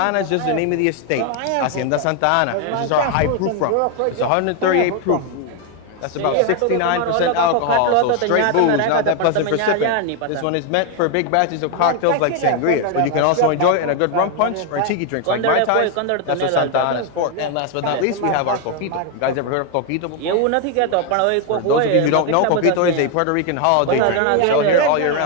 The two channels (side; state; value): both; different; correlation 0.01